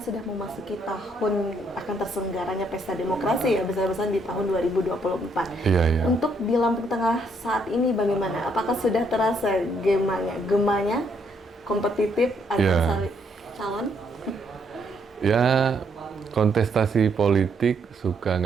memasuki tahun akan terselenggaranya Pesta Demokrasi ya, besar-besaran di tahun 2024. Iya, iya. Untuk di Lampung Tengah saat ini bagaimana? Apakah sudah terasa gemanya kompetitif antara calon? Ya, kontestasi politik suka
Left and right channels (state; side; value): normal; both; correlation 0.72